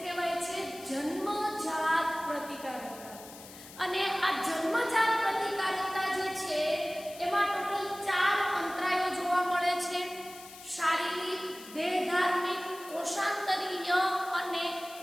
કહેવાય છે? જન્મજાત પ્રતિકારકતા. અને આ જન્મજાત પ્રતિકારકતા જે છે એમાં ટોટલ 4 અંતરાયો જોવા મળે છે: શારીરિક, દેહધાર્મિક, કોષાંતરીય અને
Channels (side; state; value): left; noise; hiss, 17 dB below the sound